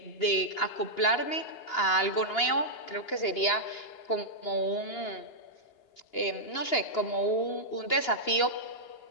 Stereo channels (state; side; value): late; right; 2.9 ms